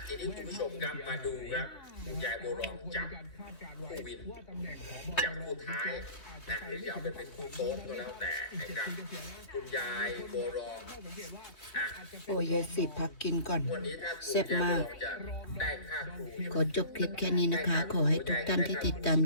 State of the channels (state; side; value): late; right; 3.2 ms